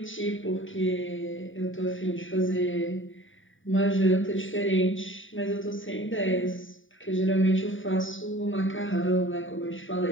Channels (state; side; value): late; right; 0.57 ms